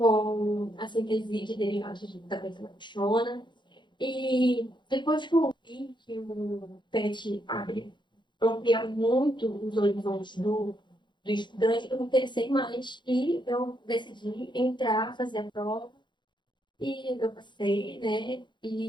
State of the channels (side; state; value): right; late; 0.22 ms